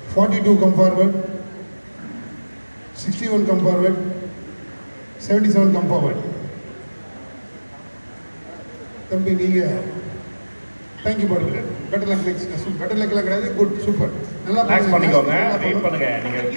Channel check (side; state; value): both; inverted; correlation -1.00